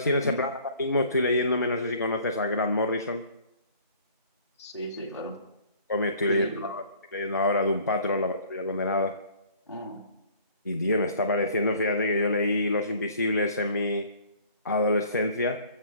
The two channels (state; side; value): inverted; both; correlation -0.53